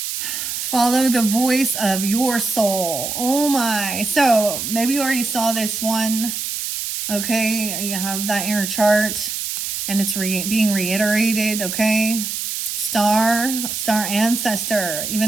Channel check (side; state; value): right; noise; hiss, 4 dB below the sound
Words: Follow the voice of your soul. Oh my. So maybe you already saw this one. Okay. You have that in your chart and it's being reiterated. Okay. Star ancestor,